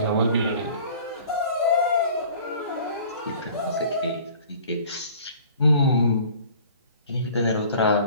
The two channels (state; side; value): inverted; both; correlation -0.48